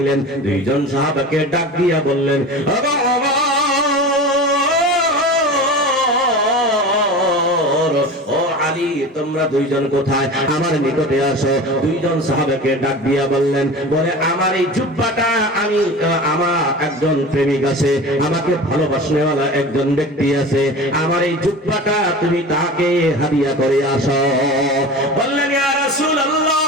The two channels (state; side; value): normal; both; correlation 0.33